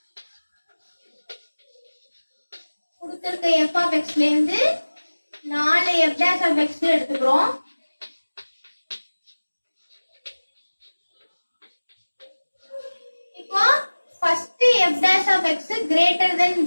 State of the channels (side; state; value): both; inverted; correlation -1.00